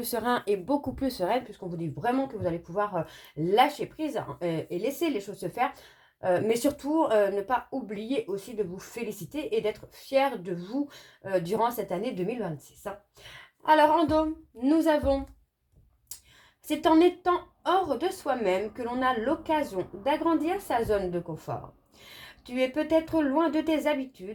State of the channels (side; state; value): both; identical; correlation 1.00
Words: serein et beaucoup plus sereine, puisqu'on vous dit vraiment que vous allez pouvoir lâcher prise et laisser les choses se faire. Mais surtout, ne pas oublier aussi de vous féliciter et d'être fier de vous durant cette année 2026. Alors, en dos, nous avons... C'est en étant hors de soi-même que l'on a l'occasion d'agrandir sa zone de confort. Tu es peut-être loin de tes